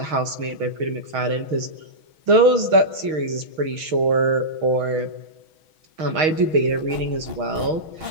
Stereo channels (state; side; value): late; left; 6.3 ms